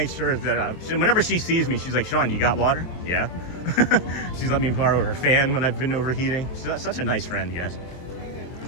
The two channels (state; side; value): late; right; 23 ms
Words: sure that whenever she sees me, she's like, "Sean, you got water?" Yeah. She's let me borrow her fan when I've been overheating. She's such a nice friend, guys.